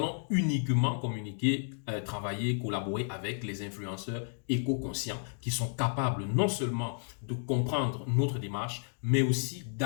uniquement communiquer, travailler, collaborer avec les influenceurs éco-conscients qui sont capables non seulement de comprendre notre démarche, mais aussi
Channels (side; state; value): right; silent; digital silence